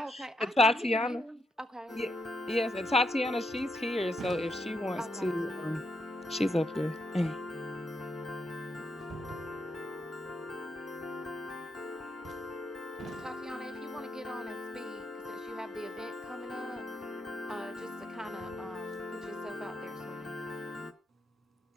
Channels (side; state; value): both; normal; correlation 0.80